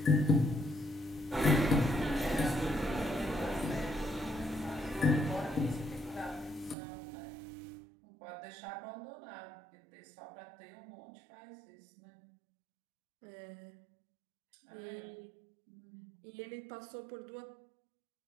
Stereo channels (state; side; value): drops out; left; at 6.8 s